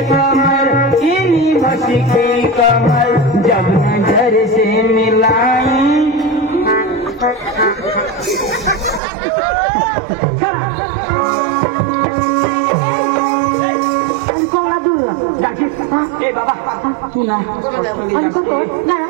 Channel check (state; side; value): drops out; left; at 9.0 s